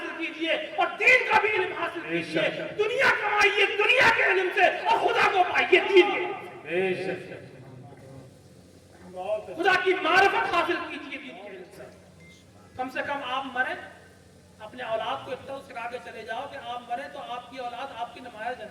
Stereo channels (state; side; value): identical; both; correlation 1.00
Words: کیجئے اور دین کا بھی علم حاصل کیجئے. دنیا کمائیے دنیا کے علم سے, اور خدا کو پائیے دین کے علم سے. خدا کی معرفت حاصل کیجئے دین کے علم سے. کم سے کم آپ مریں, اپنے اولاد کو اتنا سکھا کے چلے جاؤ کہ آپ مریں تو آپ کی اولاد آپ کی نماز